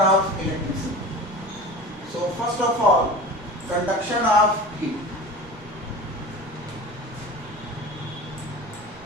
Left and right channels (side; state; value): both; normal; correlation 0.35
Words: electricity. So first of all, conduction of heat.